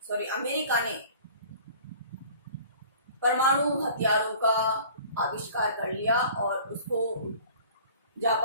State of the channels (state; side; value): inverted; both; correlation -0.47